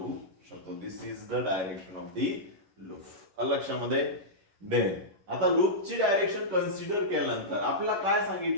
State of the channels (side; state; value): left; late; 11 ms